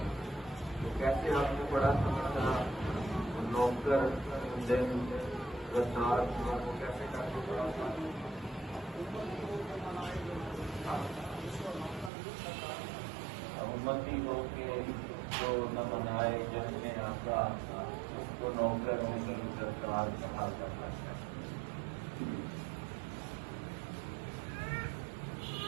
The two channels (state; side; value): drops out; left; at 12.1 s